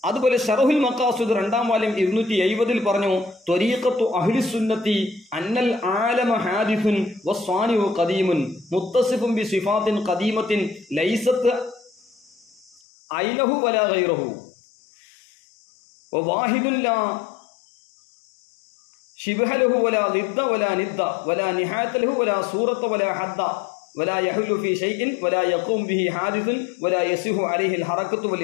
അതുപോലെ ശറഹുൽ മഖാസിദ് 2ാം വാല്യം 270 പറഞ്ഞു ത്വരീഖത്തു അഹ്ലി സുന്നത്തി അന്നൽ ആലമ ഹാദിസുൻ വസ്വാനിഉ ഖദീമുൻ മുത്തസിഫുൻ ബി സിഫാത്തിൻ ഖദീമത്തിൻ ലൈസത്ത് ഐനഹു വലാ ഗൈറഹു വവാഹിദുൻ ലാ شبه له ولا ضد ولا ند ولا نهاية له ولا صورة ولا حد ولا يحل في شيء ولا يقوم به حادث ولا يصح عليه الحركة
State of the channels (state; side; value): drops out; right; at 12.8 s